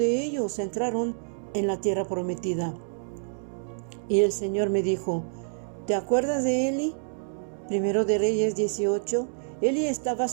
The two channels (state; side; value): silent; left; digital silence